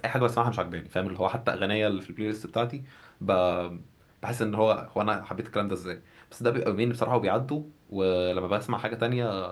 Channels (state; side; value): identical; both; correlation 1.00